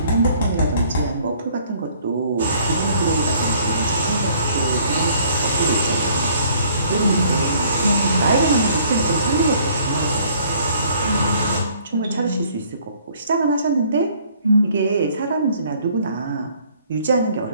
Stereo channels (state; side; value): inverted; both; correlation -0.59